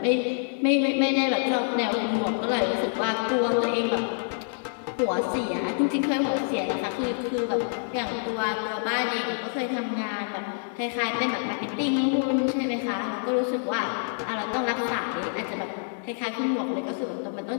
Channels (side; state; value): right; silent; 60 dB below the other